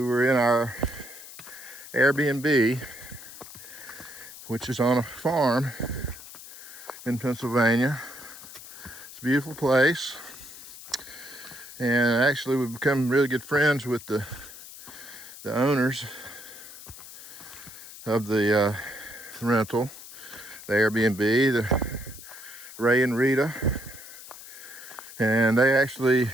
were in our Airbnb, which is on a farm in Pennsylvania. It's a beautiful place, and actually we've become really good friends with the owners of the rental, the Airbnb, the Ray and Rita, and they actually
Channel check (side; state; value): left; noise; hiss, 15 dB below the sound